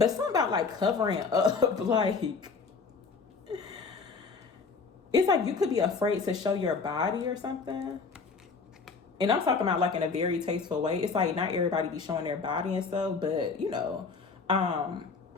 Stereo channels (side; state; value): right; quieter; 4.8 dB